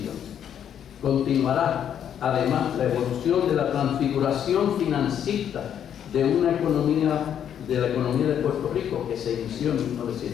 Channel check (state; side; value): quieter; right; 9.2 dB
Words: Continuará además la evolución de la transfiguración financista de la economía de Puerto Rico que se inició en